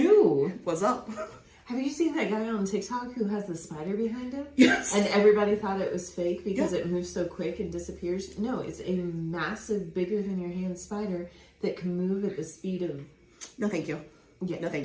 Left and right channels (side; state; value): both; identical; correlation 1.00